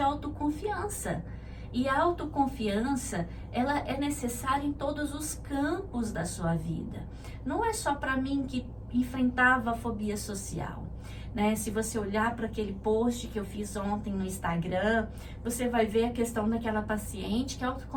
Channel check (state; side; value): identical; both; correlation 1.00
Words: autoconfiança. E a autoconfiança, ela é necessária em todos os campos da sua vida. Não é só para mim que enfrentava a fobia social, né? Se você olhar para aquele post que eu fiz ontem no Instagram, você vai ver a questão daquela paciente que a